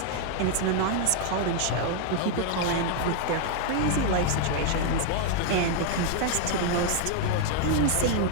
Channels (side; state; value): both; different; correlation 0.00